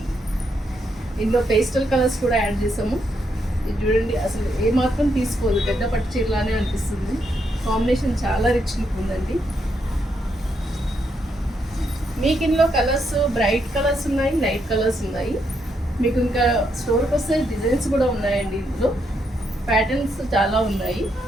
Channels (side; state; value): both; normal; correlation 0.78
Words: ఇందులో పేస్టల్ కలర్స్ కూడా యాడ్ చేసాము. ఇది చూడండి, అసలు ఏమాత్రం తీసుకోదు, పెద్ద పట్టు చీరలానే అనిపిస్తుంది. కాంబినేషన్ చాలా రిచ్ లుక్ ఉందండి. మీకు ఇందులో కలర్స్ బ్రైట్ కలర్స్ ఉన్నాయి, లైట్ కలర్స్ ఉన్నాయి. మీకు ఇంకా స్టోర్కి వస్తే డిజైన్స్ కూడా ఉన్నాయండి. ఇందులో ప్యాటర్న్స్ చాలా ఉన్నాయి.